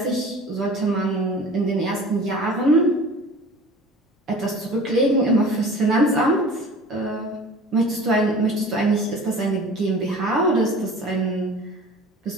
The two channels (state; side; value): normal; both; correlation 0.41